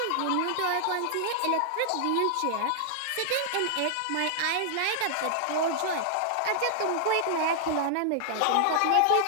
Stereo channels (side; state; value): both; different; correlation -0.01